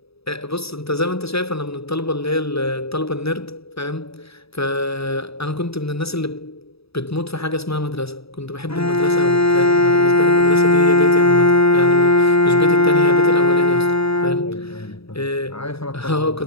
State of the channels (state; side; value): late; right; 0.77 ms